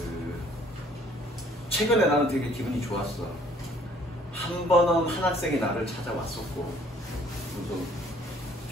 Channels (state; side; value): normal; both; correlation 0.59